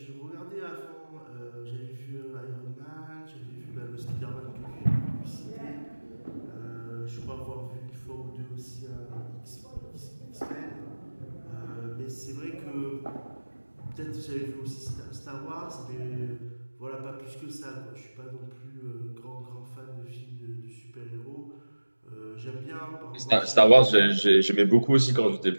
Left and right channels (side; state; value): both; inverted; correlation -1.00